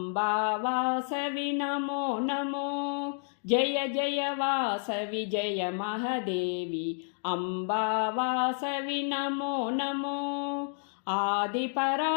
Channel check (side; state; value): right; silent; digital silence